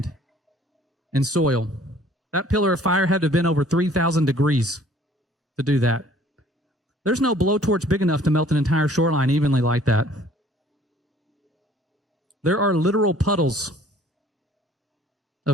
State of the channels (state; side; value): normal; both; correlation 0.55